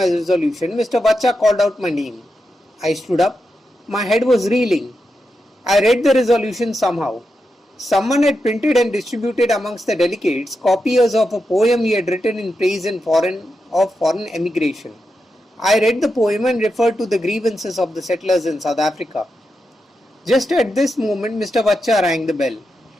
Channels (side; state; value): both; normal; correlation 0.87